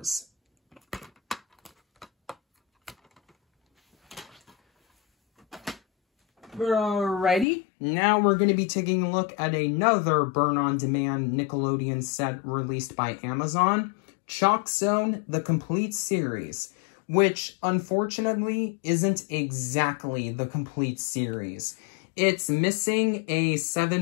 Alrighty, now we're going to be taking a look at another burn-on-demand Nickelodeon set released by Amazon, Chalk Zone, the complete series, which unfortunately isn't exactly the complete series. It's missing a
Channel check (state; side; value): drops out; right; at 7.5 s